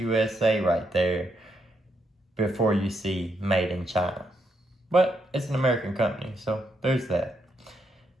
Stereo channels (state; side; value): normal; both; correlation 0.79